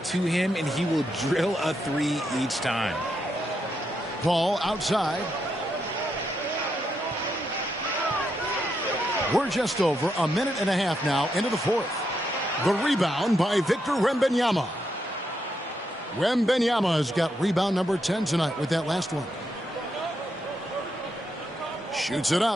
him, and he will drill a 3 each time. Paul outside. We're just over a minute and a half now into the fourth. The rebound by Victor Wembanyama. Wembanyama has got rebound number 10 tonight with that last one. Shoots it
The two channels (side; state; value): both; normal; correlation 0.81